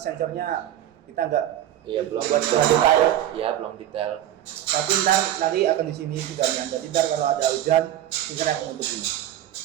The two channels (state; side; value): quieter; left; 12.1 dB